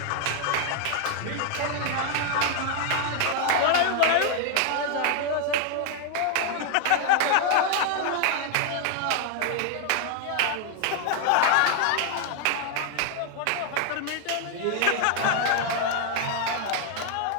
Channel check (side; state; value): both; different; correlation 0.00